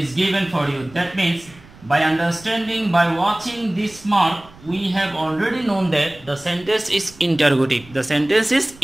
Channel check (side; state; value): right; noise; rumble, 23 dB below the sound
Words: given for you. That means by understanding, by watching this mark, we have already known that the sentence is interrogative. The sentence is